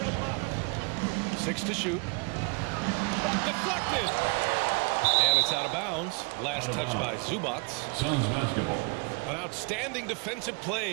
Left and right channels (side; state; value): left; quieter; 32.7 dB